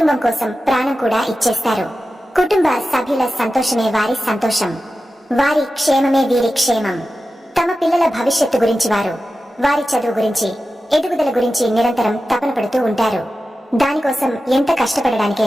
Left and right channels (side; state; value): both; normal; correlation 0.93